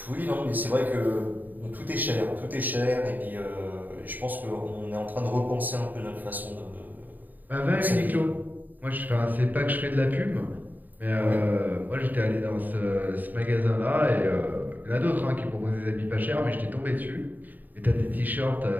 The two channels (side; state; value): left; late; 0.086 ms